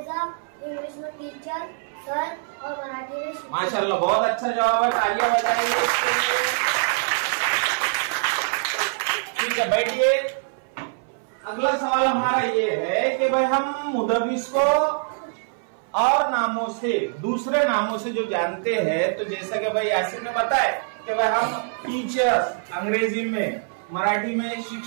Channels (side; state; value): left; silent; 61 dB below the other